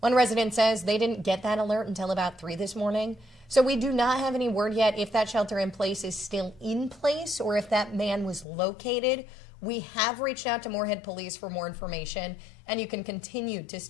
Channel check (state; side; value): drops out; right; at 8.5 s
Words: resident says they didn't get that alert until about 3 this morning. So we do not have any word yet if that shelter in place is still in place or if that man was located. We have reached out to Moorhead Police for more information, and you can continue to